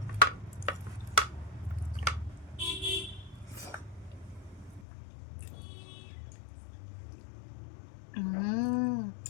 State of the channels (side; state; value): right; drops out; at 4.9 s